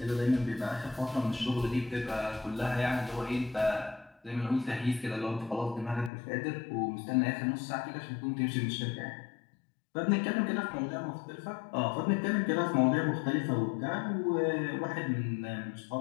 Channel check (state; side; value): drops out; right; at 6.1 s